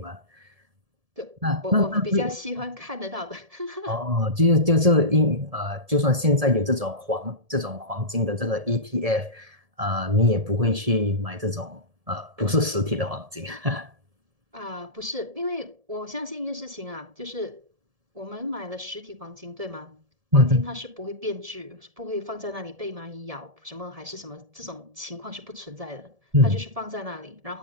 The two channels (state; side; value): late; left; 1.7 ms